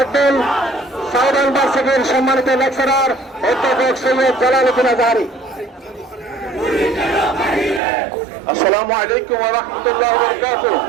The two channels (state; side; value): drops out; left; at 7.8 s